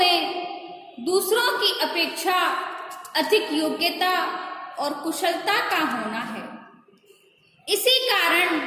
दूसरों की अपेक्षा अधिक योग्यता और कुशलता का होना है। इसी कारण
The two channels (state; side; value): identical; both; correlation 1.00